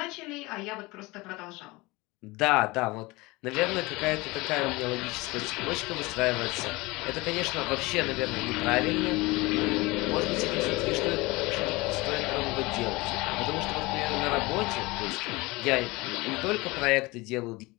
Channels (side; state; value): right; quieter; 22.9 dB